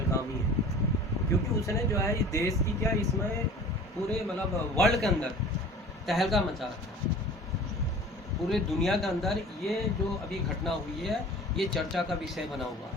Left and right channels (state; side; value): normal; both; correlation 0.42